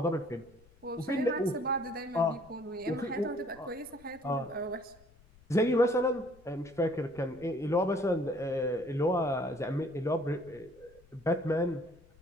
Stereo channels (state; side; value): noise; left; rumble, 27 dB below the sound